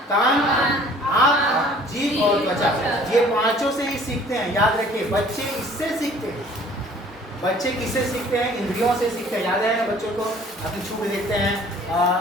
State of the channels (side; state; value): both; normal; correlation 0.53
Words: कान, आँख, जीभ और त्वचा। ये 5 से ही सीखते हैं, याद रखिए। बच्चे इससे सीखते हैं। बच्चे किससे सीखते हैं? इंद्रियों से सीखते हैं। याद है ना, बच्चों को अपनी छू के देखते हैं,